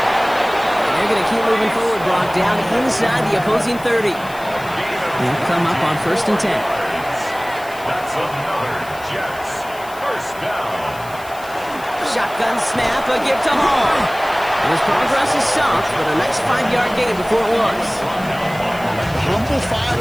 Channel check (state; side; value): noise; left; hiss, 19 dB below the sound